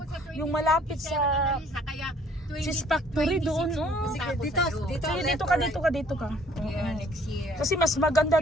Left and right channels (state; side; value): normal; both; correlation 0.58